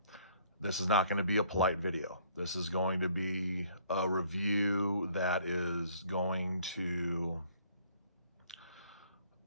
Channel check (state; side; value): inverted; both; correlation -0.60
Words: This is not going to be a polite video. This is going to be a review that is going to